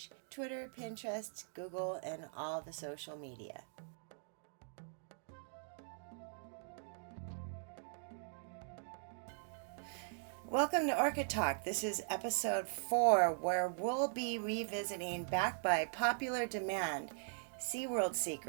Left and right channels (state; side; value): silent; left; digital silence